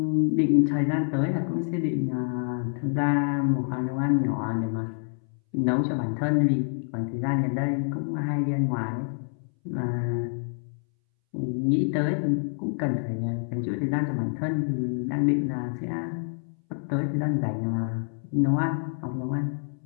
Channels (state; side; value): silent; right; 60 dB below the other